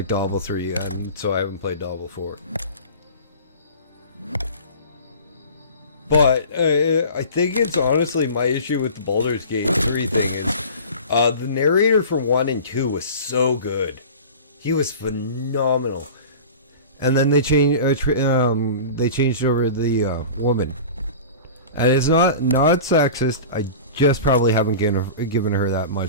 Diablo 3, and so I haven't played Diablo 4. But I think it's honestly my issue with the Baldur's Gate 3 thing is the narrator for 1 and 2 was so good. He was phenomenal. And then they changed over the woman. And it's not sexist. I just probably haven't given her that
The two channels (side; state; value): both; inverted; correlation -0.37